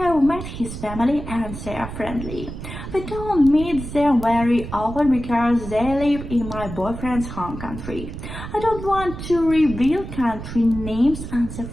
met his family and they are friendly. We don't meet them very often because they live in my boyfriend's home country. I don't want to reveal country names and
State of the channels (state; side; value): noise; right; rumble, 9 dB below the sound